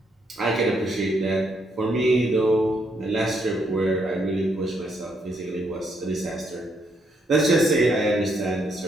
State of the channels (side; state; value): both; normal; correlation 0.74